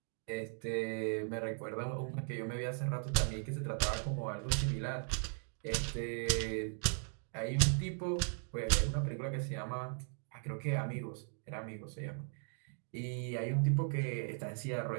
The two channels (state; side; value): silent; left; 52 dB below the other